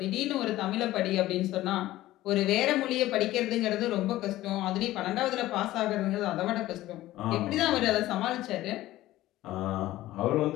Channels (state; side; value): quieter; right; 15.8 dB